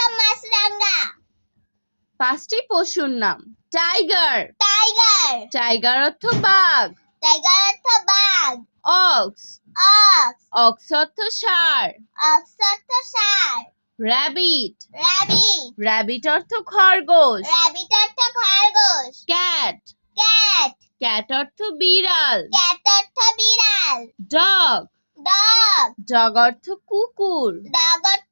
মাছরাঙা। 5টি পশুর নাম। টাইগার। টাইগার। টাইগার অর্থ বাঘ। টাইগার অর্থ বাঘ। অক্স। অক্স। অক্স অর্থ ষাঁড়। অক্স অর্থ ষাঁড়। র্যাবিট। র্যাবিট। র্যাবিট অর্থ খরগোশ। র্যাবিট অর্থ খরগোশ। ক্যাট। ক্যাট। ক্যাট অর্থ বিড়াল। ক্যাট অর্থ বিড়াল। ডগ। ডগ। ডগ অর্থ কুকুর। ডগ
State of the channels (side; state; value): both; inverted; correlation -1.00